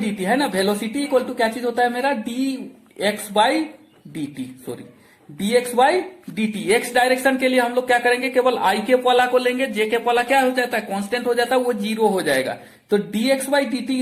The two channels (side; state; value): both; identical; correlation 1.00